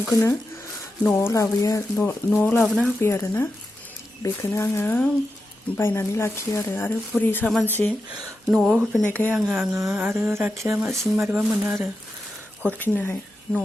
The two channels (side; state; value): both; normal; correlation 0.89